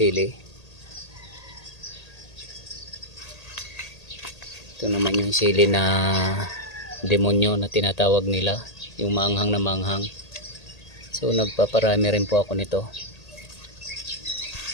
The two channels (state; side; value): late; right; 1.8 ms